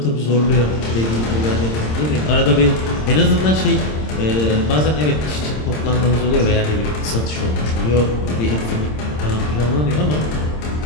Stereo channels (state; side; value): late; right; 26 ms